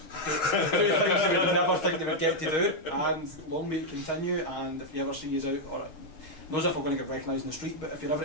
they would never think they would get to do, and long may it continue. And if you ever see us out, or not as if we're going to get recognised in the street, but if you're ever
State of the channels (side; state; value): right; late; 6.4 ms